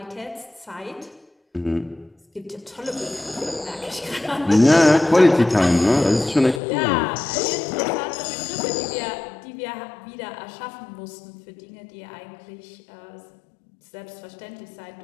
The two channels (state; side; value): drops out; right; at 6.6 s